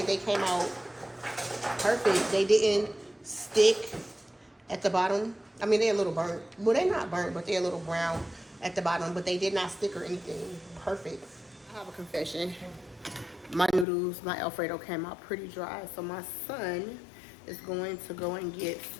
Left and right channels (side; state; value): right; drops out; at 13.9 s